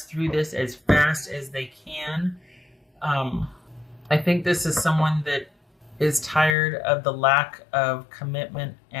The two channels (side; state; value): right; drops out; at 6.6 s